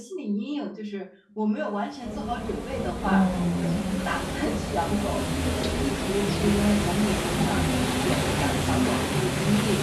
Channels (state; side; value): identical; both; correlation 1.00